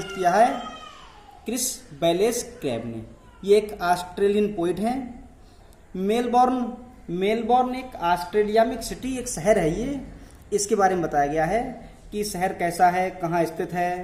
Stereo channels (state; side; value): identical; both; correlation 1.00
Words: किया है क्रिस बैलेस क्रैब ने। ये एक ऑस्ट्रेलियन पोइट हैं। मेलबॉर्न एक ऑस्ट्रेलिया में एक सिटी, एक शहर है। ये इसके बारे में बताया गया है कि शहर कैसा है, कहाँ स्थित है।